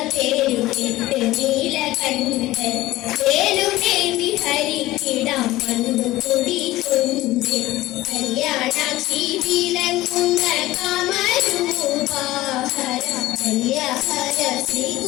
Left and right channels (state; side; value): quieter; right; 17.0 dB